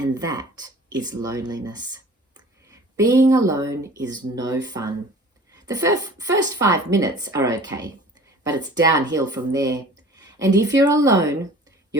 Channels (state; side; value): normal; both; correlation 0.46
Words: that is loneliness. Being alone is no fun. The first 5 minutes are okay, but it's downhill from there. And if you're alone,